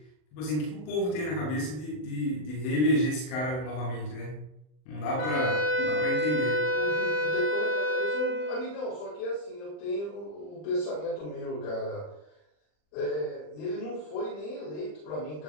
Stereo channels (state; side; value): late; right; 40 ms